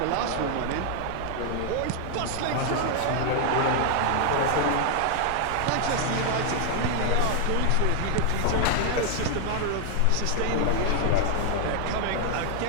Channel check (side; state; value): both; different; correlation 0.00